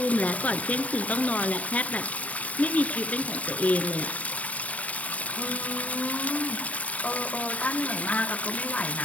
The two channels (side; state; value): right; late; 0.069 ms